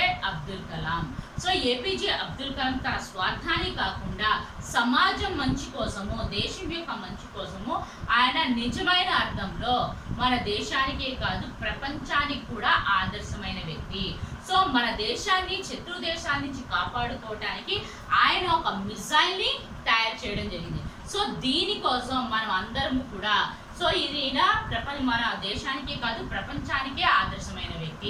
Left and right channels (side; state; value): both; identical; correlation 1.00